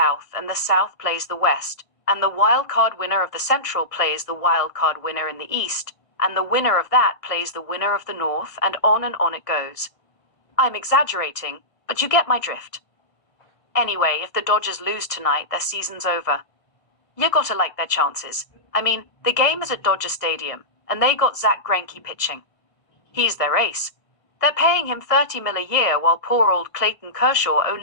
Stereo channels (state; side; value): late; right; 1.6 ms